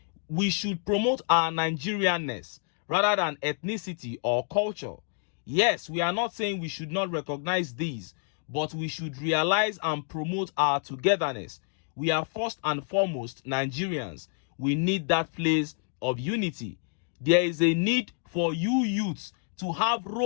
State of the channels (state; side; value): silent; right; 59 dB below the other